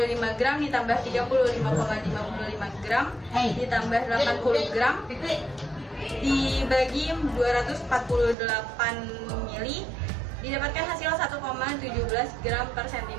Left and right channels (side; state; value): left; drops out; at 8.3 s